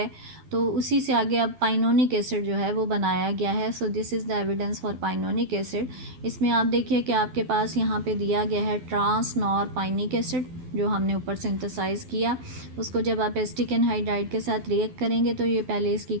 तो उसी से आगे अब पाइनोनिक एसिड जो है वो बनाया गया है। So this is the evidence for pinonic acid. इसमें आप देखिए कि आपके पास यहाँ पे दिया गया है ट्रांस नॉरपाइनिक एसिड जो हमने ऊपर सिंथेसाइज किया। उसको जब आप एसिटिक एनहाइड्राइड के साथ रिएक्ट करेंगे तो ये पहले इसकी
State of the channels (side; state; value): left; late; 12 ms